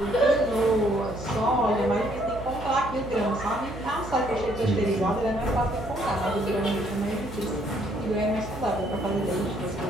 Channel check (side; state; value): right; noise; hum, 12 dB below the sound